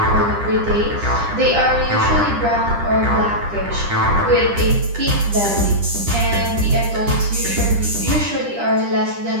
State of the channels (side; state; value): left; late; 10 ms